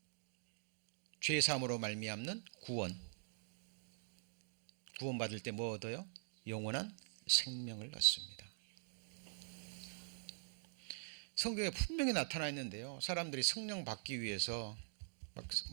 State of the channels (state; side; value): silent; left; digital silence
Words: 죄사함으로 말미암는 구원. 구원 받을 때 뭐 얻어요? 영원한 생명을 얻습니다. 성경에 분명히 나타나 있는데요 사람들이 성령 받기 위해서 막